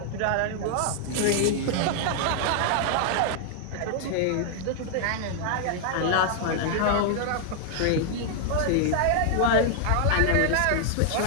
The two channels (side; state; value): both; different; correlation 0.00